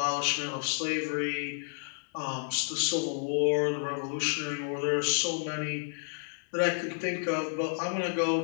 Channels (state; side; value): silent; right; digital silence